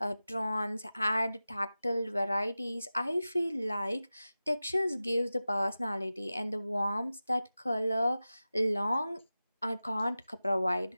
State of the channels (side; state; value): both; inverted; correlation -0.95